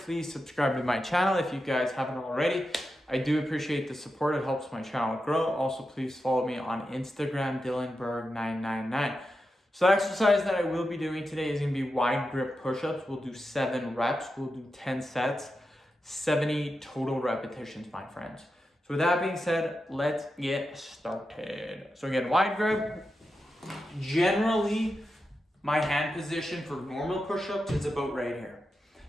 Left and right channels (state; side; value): normal; both; correlation 0.89